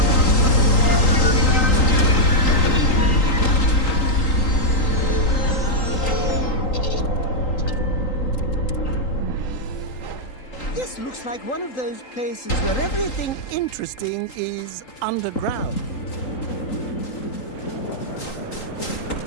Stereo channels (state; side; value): late; right; 3.8 ms